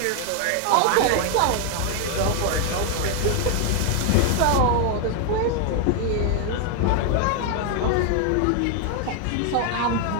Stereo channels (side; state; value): both; different; correlation 0.00